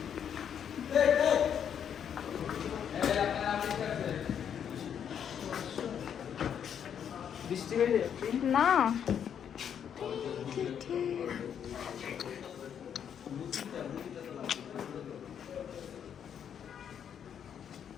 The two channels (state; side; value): quieter; right; 8.5 dB